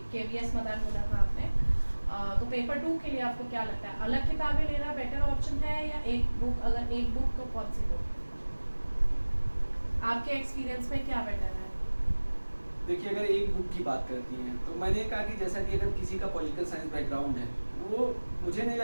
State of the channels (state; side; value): inverted; both; correlation -1.00